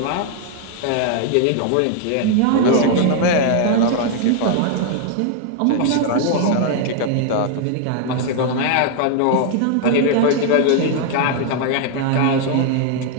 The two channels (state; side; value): different; both; correlation 0.00